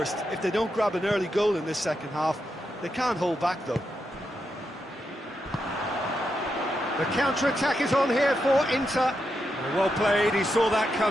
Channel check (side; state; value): both; normal; correlation 0.85